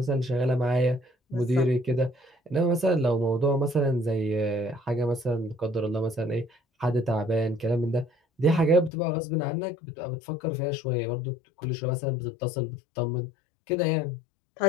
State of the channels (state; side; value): drops out; right; at 8.9 s